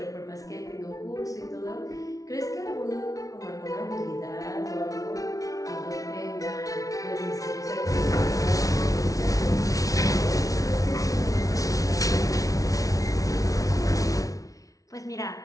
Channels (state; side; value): late; right; 0.17 ms